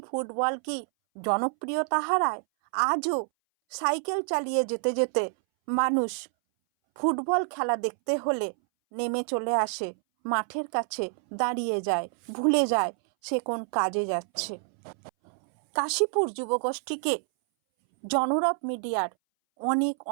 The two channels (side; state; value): left; silent; 60 dB below the other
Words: ফুটবল কি জনপ্রিয়তা হারায়? আজও সাইকেল চালিয়ে যেতে যেতে মানুষ ফুটবল খেলা দেখতে হলে নেমে চলে আসে মাঠের কাছে, দাঁড়িয়ে যায়, ভুলে যায় সে কোন কাজে যাচ্ছে। কাশীপুর যুবগোষ্ঠীকে জনরব মিডিয়ার অনেক